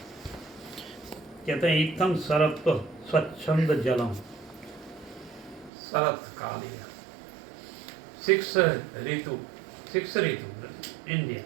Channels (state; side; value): drops out; left; at 5.7 s